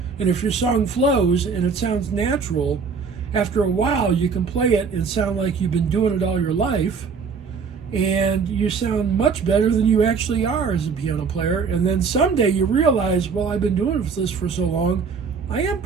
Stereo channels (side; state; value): left; quieter; 5.5 dB